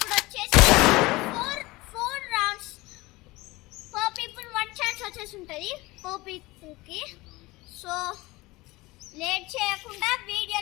వచ్చేసి ఫోర్ రౌండ్స్ పర్ పీపుల్ 1 ఛాన్స్ వచ్చేసి ఉంటుంది పర్ పీపుల్కి. సో లేట్ చేయకుండా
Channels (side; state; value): right; quieter; 21.1 dB